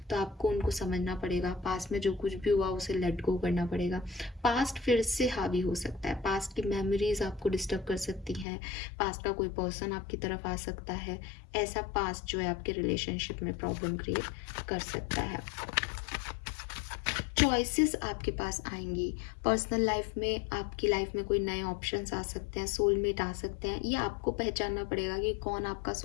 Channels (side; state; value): right; drops out; at 8.5 s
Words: तो आपको उनको समझना पड़ेगा। पास्ट में जो कुछ भी हुआ उसे लेट गो करना पड़ेगा। पास्ट फिर से हावी हो सकता है, पास्ट की मेमोरीज आपको डिस्टर्ब कर सकती हैं, पास्ट का कोई पर्सन आपकी तरफ आ सकता है। ऐसा पास्ट जो है आपके रिलेशनशिप में प्रॉब्लम क्रिएट कर सकता है। चॉइसेस आपके पास आएंगी पर्सनल लाइफ में, आपकी लाइफ में कोई नए ऑप्शंस आ सकते हैं, सोलमेट आ सकते हैं। ये आपको पहचानना पड़ेगा कि कौन आपका